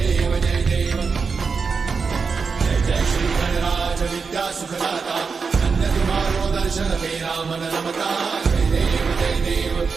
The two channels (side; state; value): left; quieter; 5.1 dB